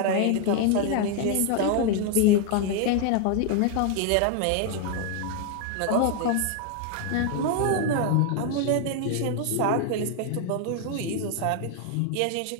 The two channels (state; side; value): different; both; correlation 0.00